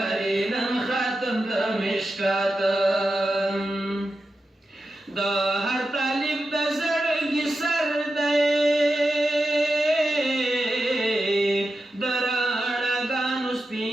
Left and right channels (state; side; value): normal; both; correlation 0.90